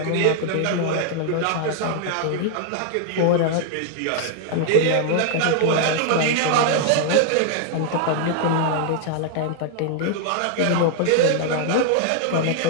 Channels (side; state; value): both; different; correlation 0.00